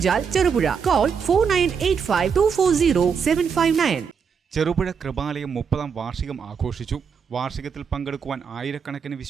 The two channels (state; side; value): quieter; left; 6.4 dB